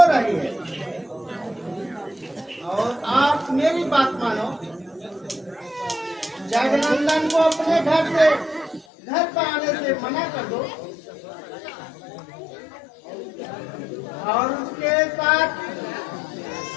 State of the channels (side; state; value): right; drops out; at 8.8 s